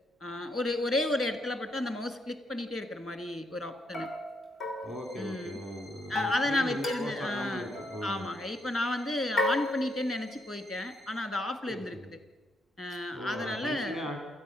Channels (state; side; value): normal; both; correlation 0.76